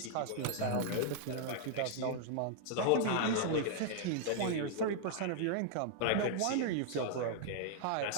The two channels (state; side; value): different; both; correlation -0.01